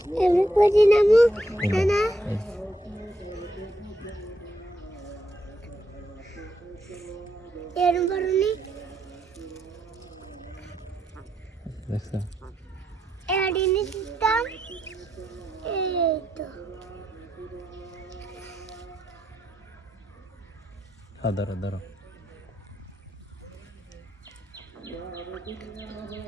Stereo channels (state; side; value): normal; both; correlation 0.78